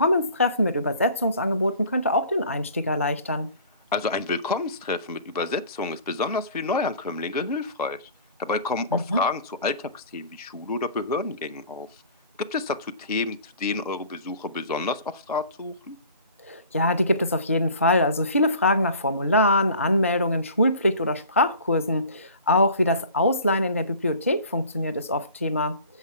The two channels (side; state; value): both; inverted; correlation -0.45